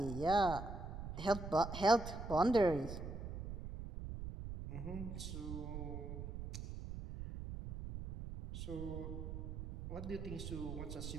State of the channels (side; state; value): right; noise; rumble, 7 dB below the sound